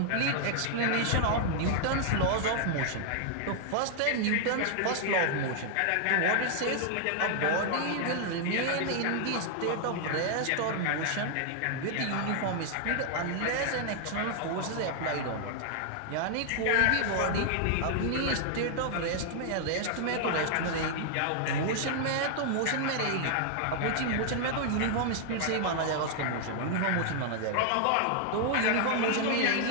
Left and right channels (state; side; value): different; both; correlation -0.01